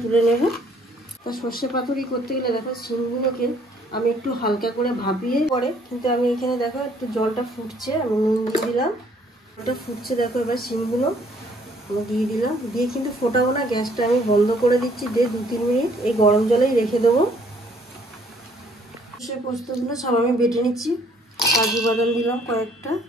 তুলে নেব। তা সর্ষে পাতুরি করতে গেলে দেখো শিমগুলোকে আমি একটু হালকা করে ভাপিয়ে পরে, কিন্তু আমি এখানে দেখো একটু জলটা ফুটছে, আমি নুন দিয়ে দিলাম। জলটা ফুটছে দেখো, এবার শিমগুলো আমি দিয়ে দিলাম। দিয়ে কিন্তু ফোটাবো না, গ্যাসটা আমি বন্ধ করে দিচ্ছি। দিয়ে 2-3 মিনিট এই গরম জলেই রেখে দেবো। সর্ষে পোস্তগুলো সব আমি বেটে নিচ্ছি। কাজু বাদাম দিলাম কয়েকটা,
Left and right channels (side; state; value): both; normal; correlation 0.63